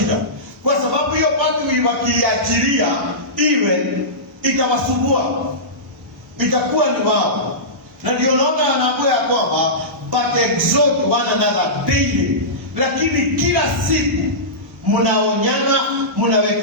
Kwa sababu hiyo part wakiachilia iwe itawasumbua. Itakuwa ni wao. Na ndio naona anakuwa ya kwamba but exhort one another daily. Lakini kila siku mnaonyana,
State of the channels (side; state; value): both; normal; correlation -0.18